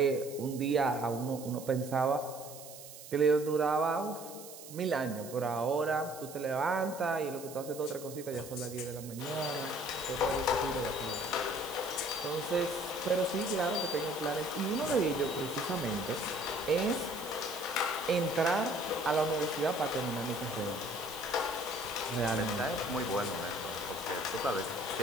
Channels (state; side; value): noise; right; hiss, 15 dB below the sound